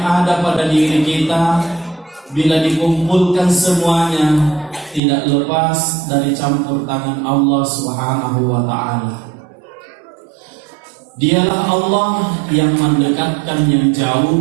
ada pada diri kita, bila dikumpulkan semuanya, tidak lepas dari campur tangan Allah Subhanahu wa Ta'ala. Dialah Allah yang mendekatkan yang jauh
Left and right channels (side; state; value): left; drops out; at 5.0 s